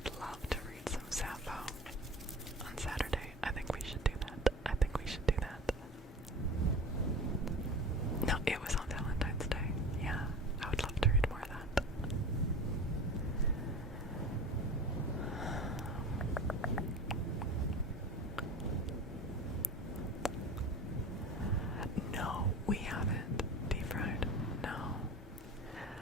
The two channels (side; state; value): both; normal; correlation 0.34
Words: love to read some Sappho on Saturday. I think we should do that. I think we should do that. No, it was on Valentine's Day. Yeah, I would love to read more of that. No, we haven't deep fried. No.